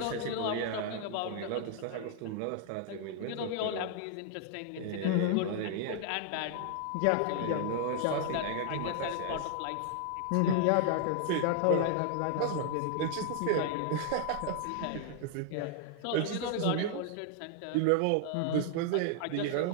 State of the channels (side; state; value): both; different; correlation 0.00